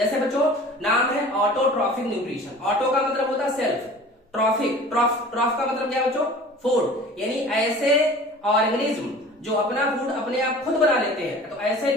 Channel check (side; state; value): both; normal; correlation 0.43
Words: बच्चों नाम है ऑटोट्रॉफिक न्यूट्रिशन। ऑटो का मतलब होता है सेल्फ, ट्रॉफिक ट्रॉफ का मतलब क्या बच्चों? फूड। यानी ऐसे ऑर्गेनिज्म जो अपना फूड अपने आप खुद बना लेते हैं, तो ऐसे